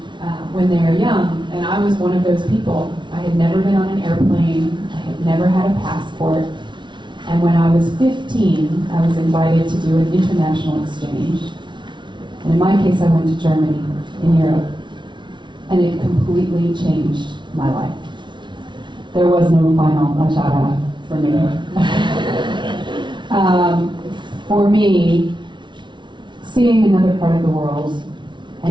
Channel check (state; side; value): late; left; 0.23 ms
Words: when they are young, and I was one of those people. I had never been on an airplane, I had never had a passport, and when I was 15, I was invited to do an international exchange. And in my case, I went to Germany, in Europe, and it completely changed my life. There was no final acara for me. For me, seeing another part of the world